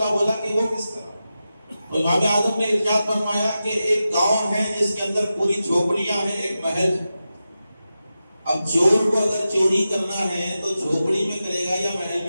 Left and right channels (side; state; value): both; inverted; correlation -0.92